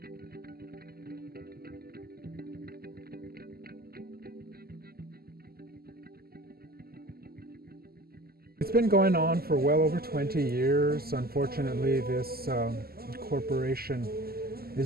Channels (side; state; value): left; late; 0.45 ms